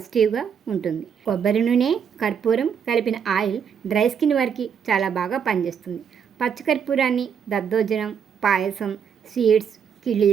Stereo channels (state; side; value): quieter; left; 7.4 dB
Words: ఉంటుంది. కొబ్బరి నూనె, కర్పూరం కలిపిన ఆయిల్ డ్రై స్కిన్ వారికి చాలా బాగా పనిచేస్తుంది. పచ్చకర్పూరాన్ని దద్దోజనం, పాయసం, స్వీట్స్,